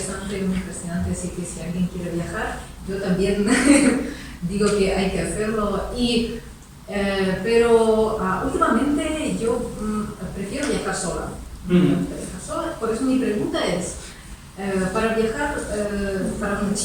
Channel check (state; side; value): identical; both; correlation 1.00